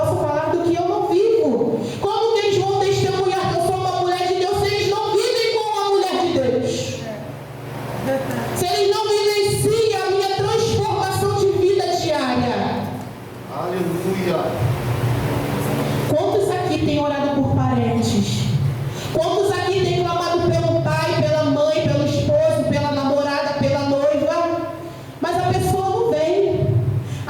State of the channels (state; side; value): identical; both; correlation 1.00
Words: falar do que eu não vivo. Como que eles vão testemunhar que eu sou uma mulher de Deus se eles não vivem como uma mulher de Deus? Se eles não vivenciam a minha transformação de vida diária? Aleluia! Quantos aqui têm orado por parentes? Quantos aqui têm clamado pelo pai, pela mãe, pelo esposo, pela namorada, pela noiva? Mas a pessoa não vem.